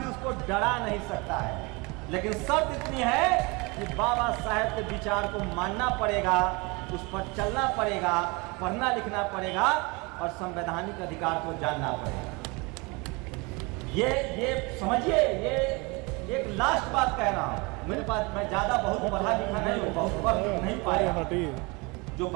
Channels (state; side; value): quieter; left; 27.4 dB